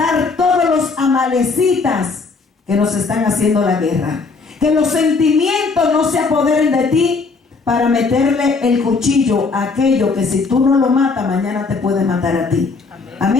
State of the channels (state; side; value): quieter; right; 4.3 dB